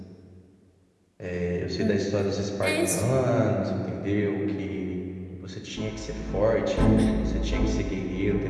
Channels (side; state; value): both; identical; correlation 1.00